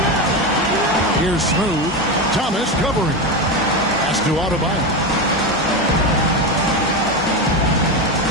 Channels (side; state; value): both; normal; correlation 0.16